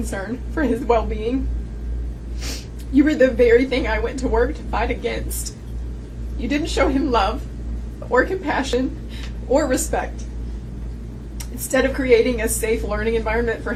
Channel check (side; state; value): both; identical; correlation 1.00